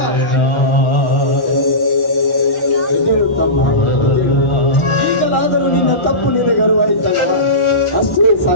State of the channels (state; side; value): late; right; 1.4 ms